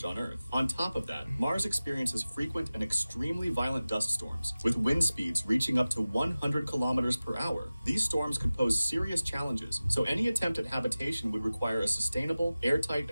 on Earth. On top of that, Mars experiences frequent and extremely violent dust storms, with wind speeds reaching up to 100 kilometers per hour. These storms could pose serious challenges, so any attempt at habitation would require a sustainable, airtight,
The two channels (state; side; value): inverted; both; correlation -0.97